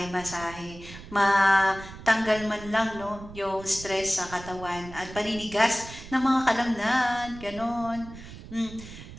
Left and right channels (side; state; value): right; noise; rumble, 15 dB below the sound